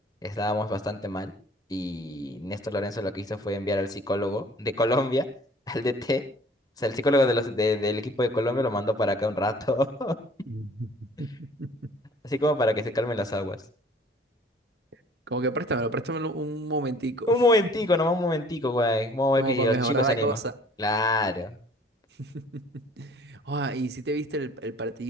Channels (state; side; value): normal; both; correlation 0.53